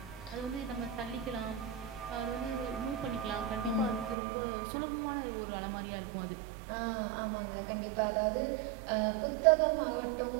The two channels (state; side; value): drops out; left; at 4.2 s